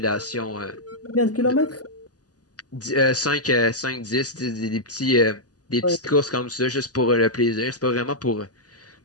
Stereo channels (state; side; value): late; right; 0.67 ms